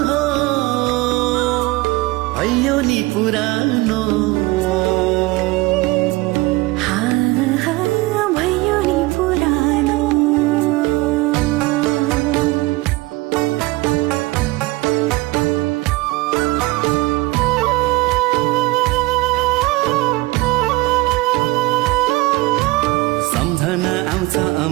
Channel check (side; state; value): left; quieter; 21.3 dB